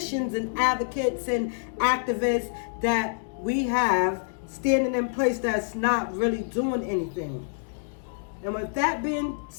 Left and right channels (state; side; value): silent; right; digital silence